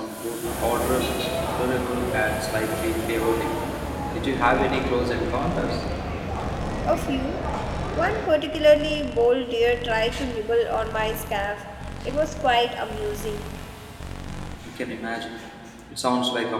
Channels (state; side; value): identical; both; correlation 1.00